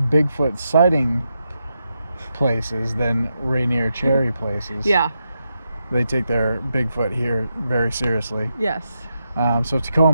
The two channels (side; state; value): both; inverted; correlation -0.85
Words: Bigfoot sighting places than Rainier cherry places. Yeah. They take their Bigfoot here very seriously. Yes. So